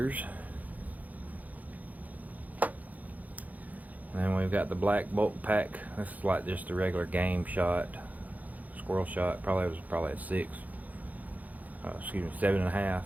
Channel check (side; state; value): left; late; 0.078 ms